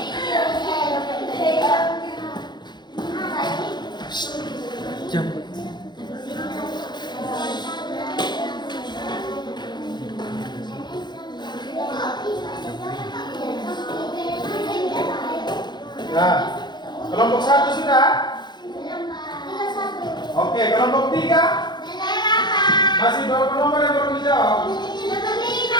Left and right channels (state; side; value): late; right; 0.21 ms